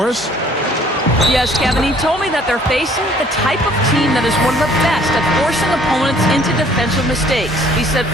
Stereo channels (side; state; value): both; normal; correlation 0.58